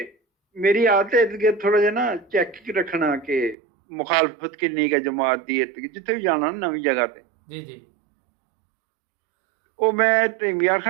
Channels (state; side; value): drops out; left; at 3.6 s